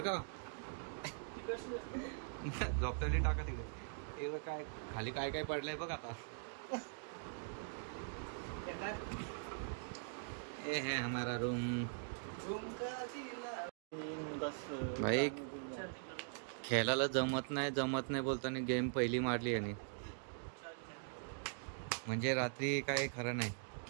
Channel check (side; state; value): left; silent; digital silence